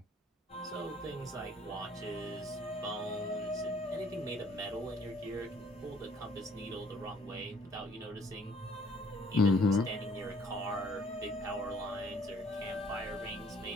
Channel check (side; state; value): both; normal; correlation 0.59